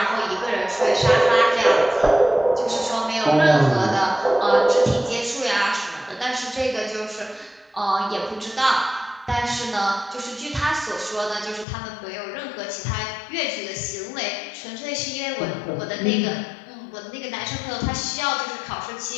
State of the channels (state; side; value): drops out; right; at 11.7 s